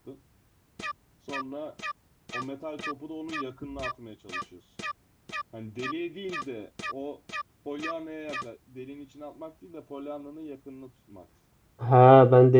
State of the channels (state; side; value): identical; both; correlation 1.00